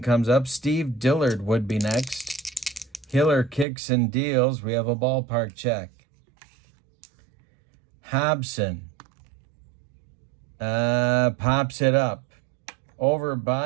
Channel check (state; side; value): drops out; left; at 3.7 s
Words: up. Steve Dillard would be next. Hiller kicks and deals. We have a ballpark check. Hobson pops it up. Over